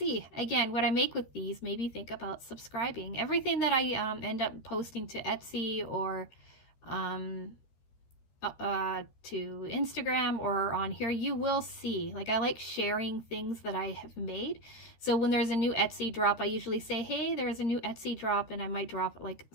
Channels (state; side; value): late; right; 13 ms